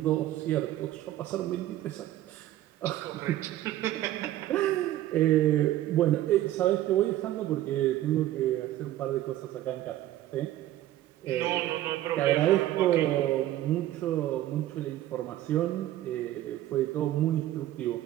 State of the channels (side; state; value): left; quieter; 13.9 dB